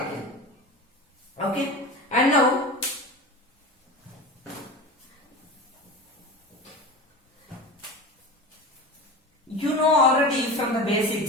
Okay, and now you know already from the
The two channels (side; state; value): both; normal; correlation 0.30